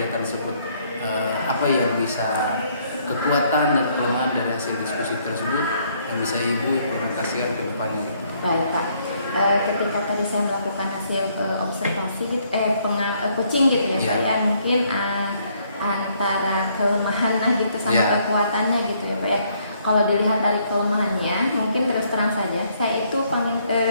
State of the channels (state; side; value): inverted; both; correlation -0.68